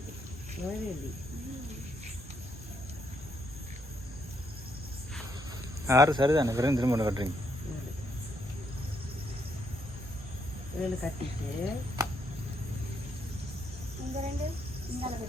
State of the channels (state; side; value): normal; both; correlation 0.75